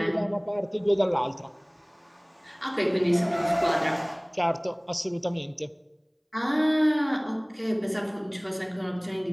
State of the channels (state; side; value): identical; both; correlation 1.00